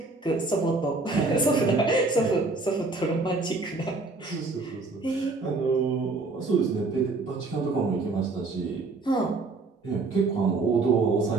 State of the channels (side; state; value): left; quieter; 3.6 dB